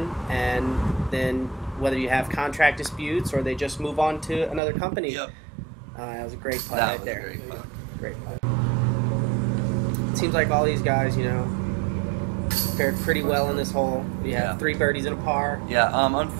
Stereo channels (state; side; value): drops out; left; at 4.6 s